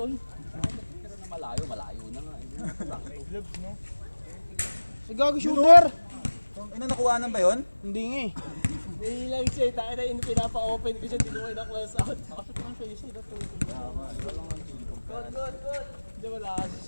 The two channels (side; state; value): both; inverted; correlation -1.00